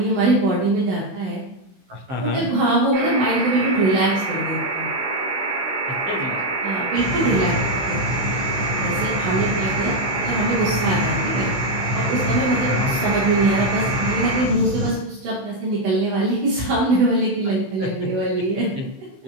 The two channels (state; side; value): late; left; 16 ms